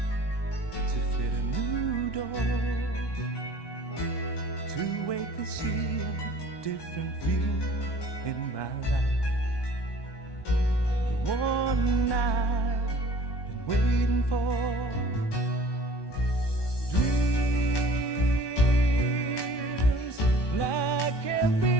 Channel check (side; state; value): right; late; 1.2 ms